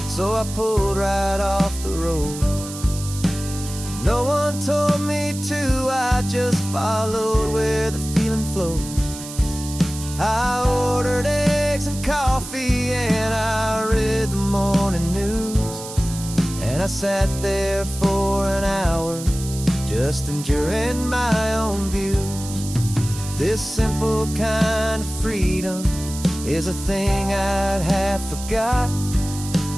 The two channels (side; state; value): right; noise; hiss, 12 dB below the sound